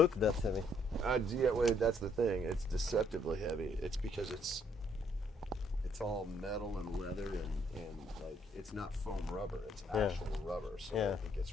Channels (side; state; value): both; normal; correlation 0.68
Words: that heavy. Yeah, well, that's the thing. It's deceptively heavy. It's because it's all metal and leather and like, it's not foam rubber. It's actual rubber. So Yeah. it gets